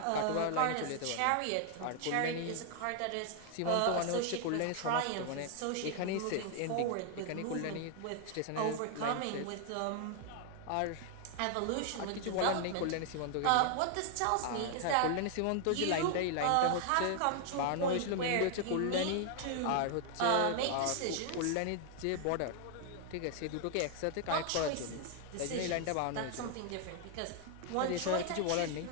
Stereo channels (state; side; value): different; both; correlation 0.00